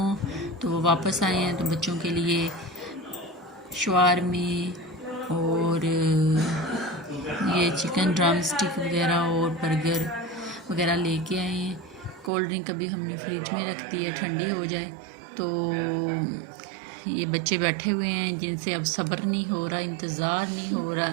तो वो वापस आए हैं। तो बच्चों के लिए शवारमे और ये चिकन ड्रम स्टिक वगैरह और बर्गर वगैरह लेके आए हैं। कोल्ड ड्रिंक अभी हमने फ्रिज में रख दी है ठंडी हो जाए। तो ये बच्चे बैठे हुए हैं जिनसे अब सब्र नहीं हो रहा, इंतज़ार नहीं हो रहा।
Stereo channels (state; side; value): drops out; left; at 12.3 s